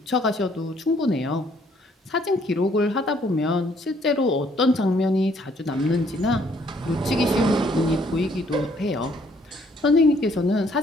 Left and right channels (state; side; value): normal; both; correlation 0.65